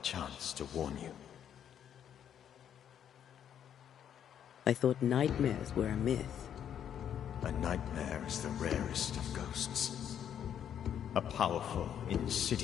chance to warn you. I thought nightmares were a myth. A nightmare is the rarest of ghosts. A powerful,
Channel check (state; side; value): quieter; right; 9.3 dB